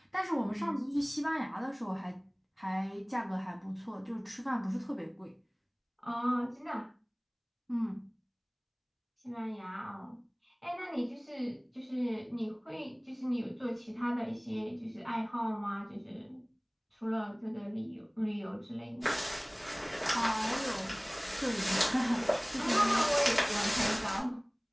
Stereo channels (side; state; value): both; identical; correlation 1.00